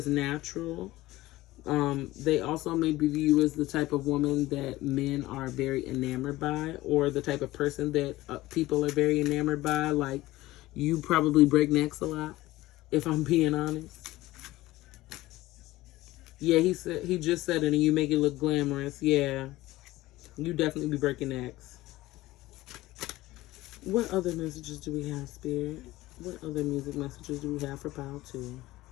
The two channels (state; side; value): quieter; right; 17.7 dB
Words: natural. They also may view you as the type of woman that men are very enamored by, or the type of person that people are very enamored by. Like, you probably break necks a lot, if I'm being honest. Yeah, he just said it, and you make it look glamorous. Yeah, you definitely be breaking necks. What other messages do we have, Spirit? What other music messages do we have for Pile 2?